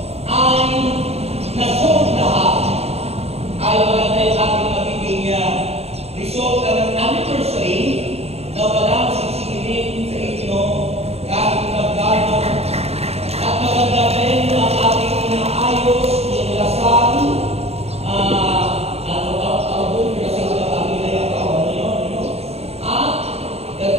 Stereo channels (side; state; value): left; late; 0.30 ms